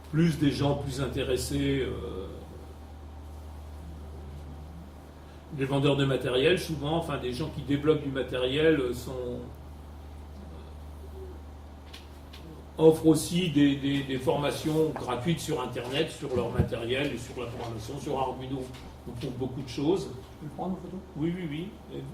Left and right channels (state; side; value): identical; both; correlation 1.00